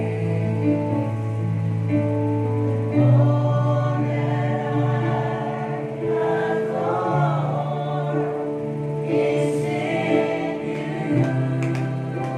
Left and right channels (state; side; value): identical; both; correlation 1.00